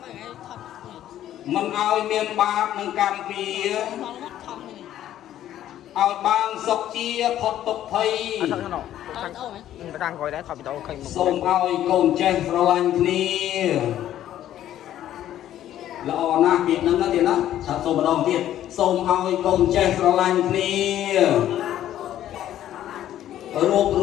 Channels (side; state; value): right; quieter; 12.0 dB